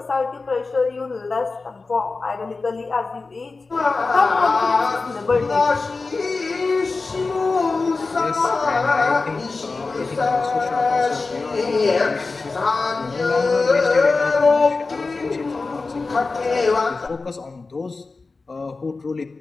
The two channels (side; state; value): right; quieter; 3.9 dB